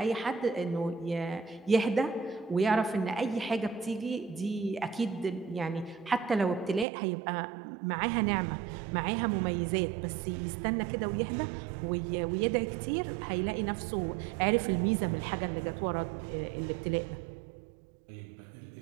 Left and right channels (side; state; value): left; drops out; at 6.9 s